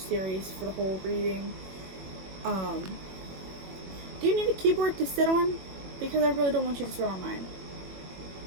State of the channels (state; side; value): late; left; 21 ms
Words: for the whole reading. Do you need a keyboard to sit on? Because I really don't want you to sit on mine.